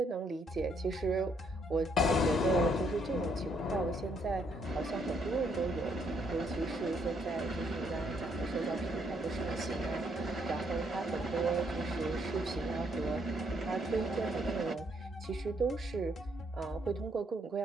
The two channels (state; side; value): normal; both; correlation 0.71